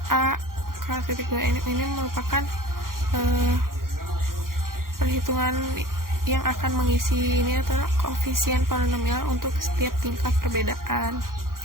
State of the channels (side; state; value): left; late; 0.91 ms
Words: A K titik 2 ini merupakan perhitungan yang akan mengisi ini adalah koefisien polinomial untuk setiap tingkat perbedaan.